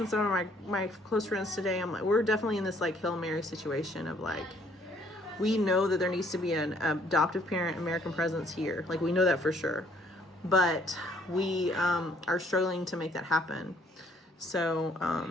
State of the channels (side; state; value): both; normal; correlation 0.63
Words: some of my close friends today. I'm like, we're definitely in this like Hail Mary situation of like, we know that there needs to be an adoptive parent American presence here. Like, we know that for sure, but we are struggling to make that happen.